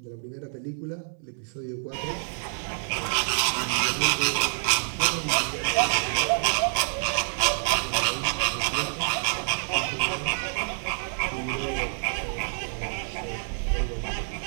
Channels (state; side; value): silent; left; 60 dB below the other